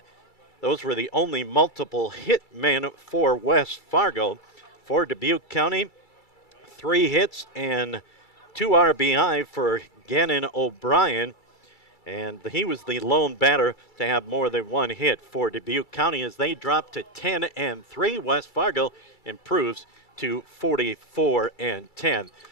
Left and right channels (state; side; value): late; right; 2.3 ms